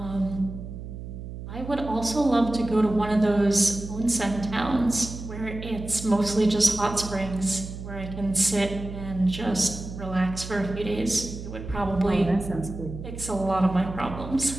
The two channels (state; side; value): noise; right; hum, 10 dB below the sound